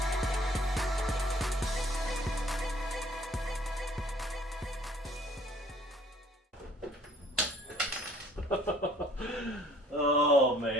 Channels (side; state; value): both; normal; correlation 0.56